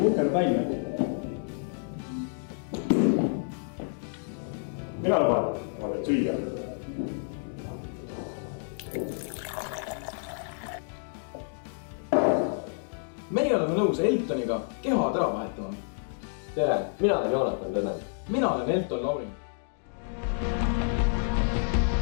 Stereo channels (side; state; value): right; silent; digital silence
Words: uhkel välja. Mina luban, ma teen süüa. Meie oleme nõus Eltoniga kehad ära vahetama. Tere, mina olen Joonatan Tõnen. Mina olen Elton Laurin.